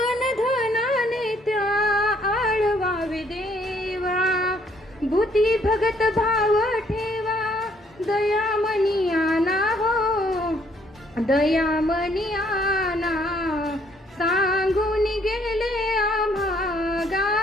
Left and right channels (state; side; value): normal; both; correlation 0.66